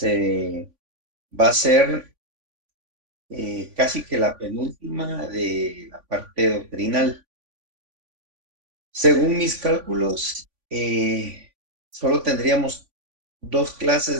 va a ser casi que la penúltima de la parte doctrinal. Según mis cálculos, solo tendríamos dos clases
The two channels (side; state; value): left; late; 3.5 ms